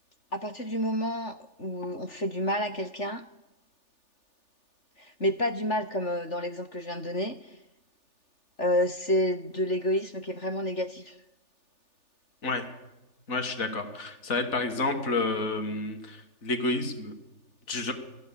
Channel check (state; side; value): late; right; 3.4 ms